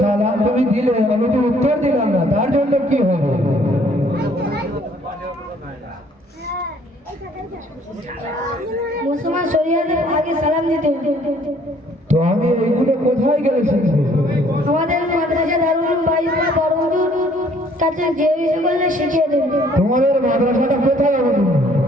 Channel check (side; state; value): both; normal; correlation 0.60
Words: সালাম তুমি দিলে, আমি তো উত্তর দিলাম না, তার জন্য কি হবে? মুসলমান শরিয়াতে আগে সালাম দিতে হতো। তো আমি এইগুলো কোথায় গেলে শিখবো? আমাদের মাদ্রাসা দারুল বাইরা বড়হুজুর কাছে যে বিষয় করলে শিখিয়ে দেবে। তোমাদের মাদ্রাসাটা কোথায় হবে?